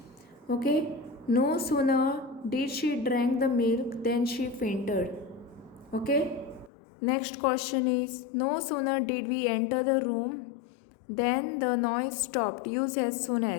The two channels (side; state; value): right; drops out; at 6.7 s